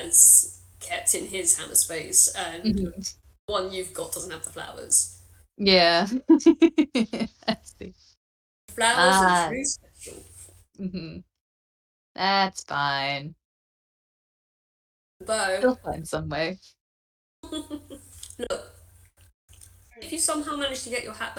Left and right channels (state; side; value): identical; both; correlation 1.00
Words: kept in his hammer space, and Mhm. the one you've got doesn't have the flowers. Yeah. I see. Flowers Ah. are Drew's special. That's fine. Bow. He'll find some way. Look, if you somehow manage to get your hat